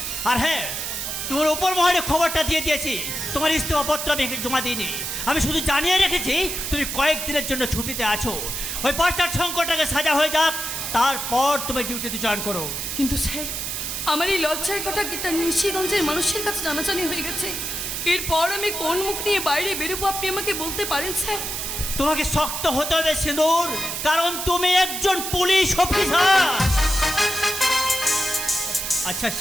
আর হ্যাঁ, তোমার উপর মহলে খবরটা দিয়ে দিয়েছি, তোমার ইস্তফাপত্র আমি জমা দিইনি। আমি শুধু জানিয়ে রেখেছি তুমি কয়েকদিনের জন্য ছুটিতে আছো। ওই পাঁচটার সংকটটাকে সাজা হয়ে যাক, তারপর তুমি ডিউটিতে জয়েন করো। কিন্তু স্যার, আমার এই লজ্জার কথা কিটা নিশিগঞ্জের মানুষের কাছে জানাজানি হয়ে গেছে। এরপর আমি কোন মুখ নিয়ে বাইরে বেরোবো আপনি আমাকে বলতে পারেন স্যার? তোমাকে শক্ত হতে হবে সিঁদুর, কারণ তুমি একজন পুলিশ অফিসার। আচ্ছা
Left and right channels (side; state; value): right; noise; hiss, 4 dB below the sound